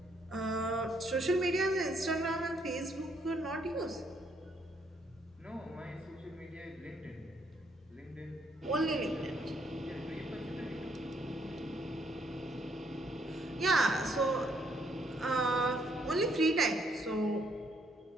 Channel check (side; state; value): both; normal; correlation 0.70